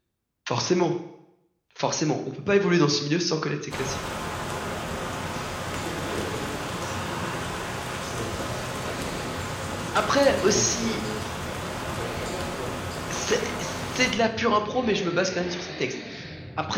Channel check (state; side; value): identical; both; correlation 1.00